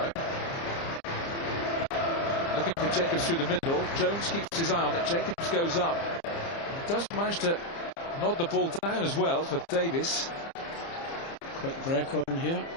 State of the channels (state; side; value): late; right; 30 ms